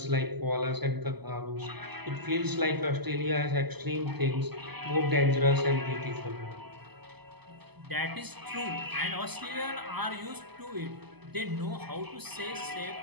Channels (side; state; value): left; late; 0.99 ms